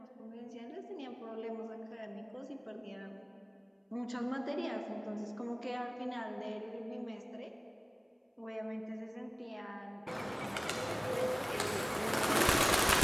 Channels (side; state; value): both; identical; correlation 1.00